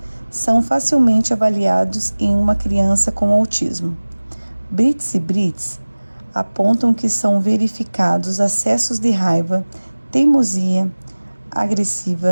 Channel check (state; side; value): inverted; both; correlation -1.00